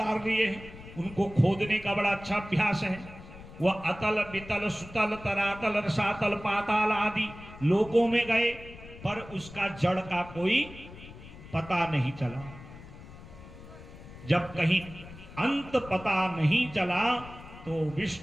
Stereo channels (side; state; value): left; noise; rumble, 16 dB below the sound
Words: लिए हैं, उनको खोदने का बड़ा अच्छा अभ्यास है। वह अतल वितल सुतल तरातल रसातल पाताल आदि लोकों में गए, पर उसका जड़ का कोई पता नहीं चला। जब कहीं अंत पता नहीं चला तो